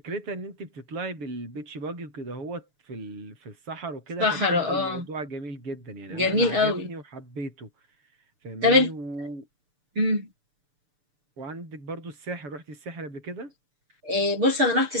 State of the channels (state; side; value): late; left; 6.8 ms